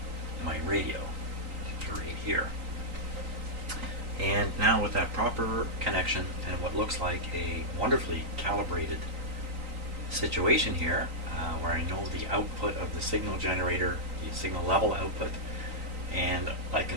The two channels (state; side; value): late; left; 3.9 ms